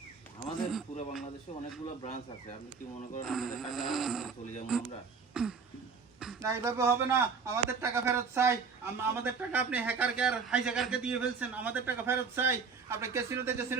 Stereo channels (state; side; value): quieter; left; 5.4 dB